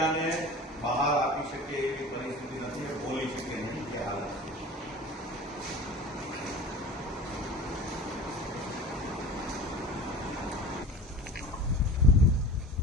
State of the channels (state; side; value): normal; both; correlation 0.38